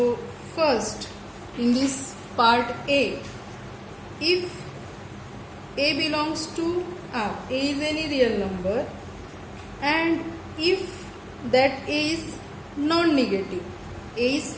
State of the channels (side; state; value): both; identical; correlation 1.00